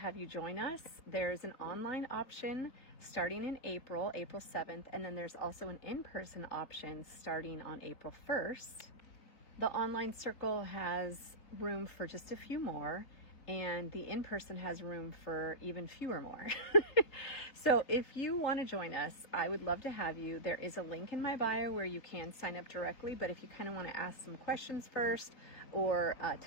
you join us. There's an online option starting in April 7th, and then there's also an in-person option starting on April 1st. The online circle has room for just a few more, and the in-person has room for even fewer more. So if you want to join us, I would love to have you. There is a link in my bio where you can sign up directly, but if you kind of want to ask some questions first or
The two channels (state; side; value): late; right; 4.0 ms